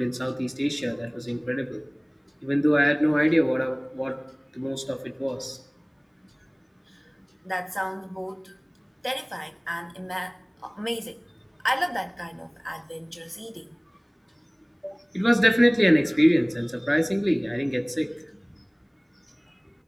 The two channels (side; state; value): both; identical; correlation 1.00